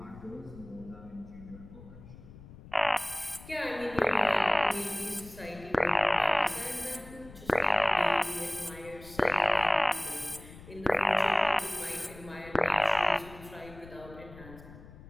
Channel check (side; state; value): left; noise; rumble, 18 dB below the sound